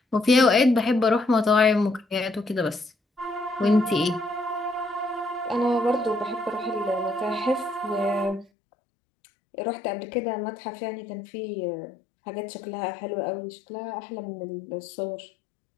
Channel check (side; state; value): right; drops out; at 8.5 s